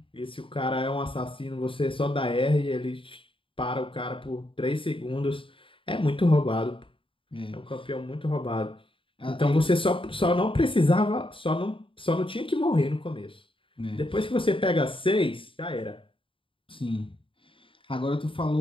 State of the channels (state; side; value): late; right; 0.25 ms